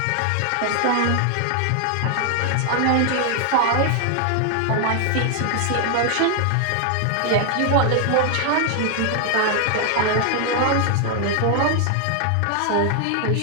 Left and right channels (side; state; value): both; different; correlation 0.00